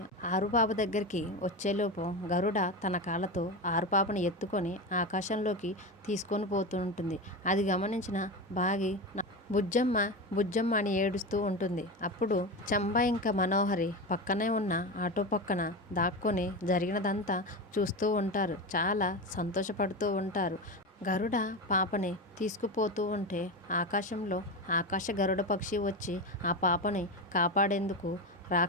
ఆరుపాప దగ్గరికి వచ్చేలోపు గరుడ తన కాళ్ళతో ఆరుపాపని ఎత్తుకొని ఆకాశంలోకి తీసుకొని పోతూ ఉంటుంది. అది గమనించిన బాగి బుజ్జమ్మ బుజ్జమ్మ అని ఏడుస్తూ ఉంటుంది. అప్పుడు చంబా ఇంకా మనోహరి పక్కనే ఉన్న ఆటో పక్కన దాక్కొని జరిగినదంతా చూస్తూ ఉంటారు. చాలా సంతోషపడుతూ ఉంటారు. గరుడ పాపని తీసుకుపోతూ ఉంటే ఆకాశంలో ఆకాశ గరుడ పక్షి వచ్చి ఆ పాపని కాపాడేందుకు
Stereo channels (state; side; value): normal; both; correlation 0.20